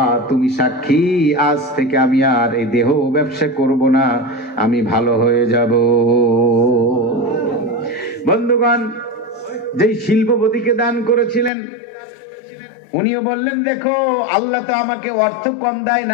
তুমি সাক্ষী, আজ থেকে আমি আর এই দেহ ব্যবসা করব না, আমি ভালো হয়ে যাব। বন্ধুগণ, যেই শিল্পপতিকে দান করেছিলেন উনিও বললেন, দেখো আল্লাহ তো আমাকে অর্থ কম দেয়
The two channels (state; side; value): drops out; right; at 11.5 s